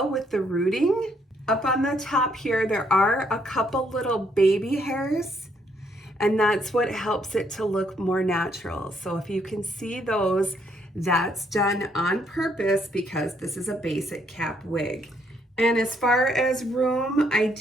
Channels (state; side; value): normal; both; correlation 0.71